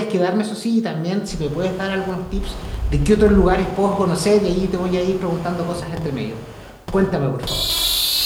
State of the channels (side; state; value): both; identical; correlation 1.00